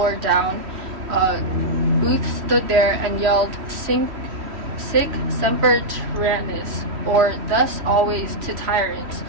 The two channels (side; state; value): left; late; 3.1 ms